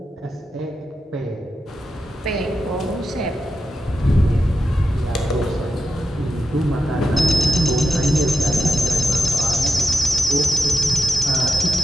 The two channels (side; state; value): both; normal; correlation 0.88